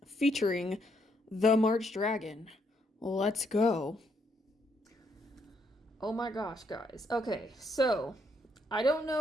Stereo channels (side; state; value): both; normal; correlation 0.74